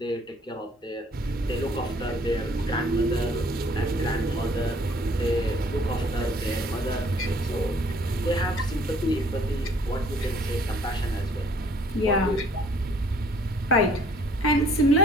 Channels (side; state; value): both; normal; correlation 0.59